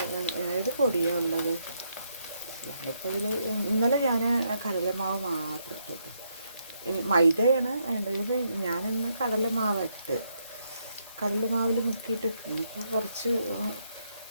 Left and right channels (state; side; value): inverted; both; correlation -0.77